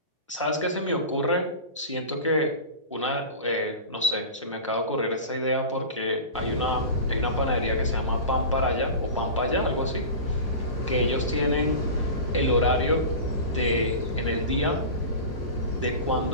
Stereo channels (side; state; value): both; inverted; correlation -0.31